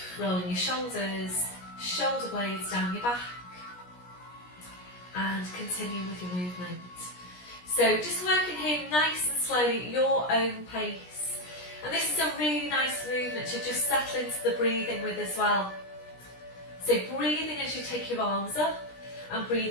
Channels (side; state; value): right; late; 17 ms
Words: rolling your shoulders, shoulder blades down your back, and continue with your movement. So just working here nice and slowly, your own pace. And this is a really nice movement to just settle into the breathing with as well. So breathing as you take your arms up, and